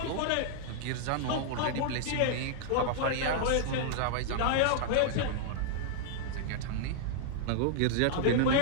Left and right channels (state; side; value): different; both; correlation -0.01